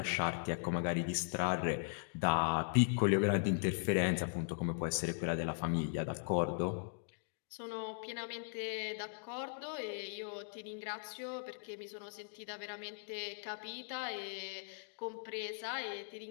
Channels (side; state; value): right; silent; digital silence